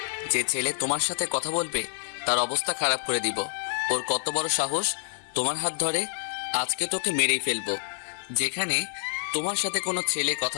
যে ছেলে তোমার সাথে কথা বলবে তার অবস্থা খারাপ করে দিব। ওর কত বড় সাহস তোমার হাত ধরে? আজকে তোকে মেরেই ফেলবো। যেখানে তোমার সাথে কোনো ছেলে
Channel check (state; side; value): silent; right; 60 dB below the other